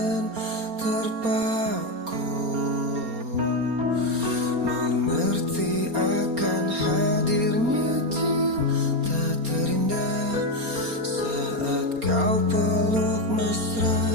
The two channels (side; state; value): left; late; 4.3 ms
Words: terpaku, mengerti akan hadirnya cinta terindah saat kau peluk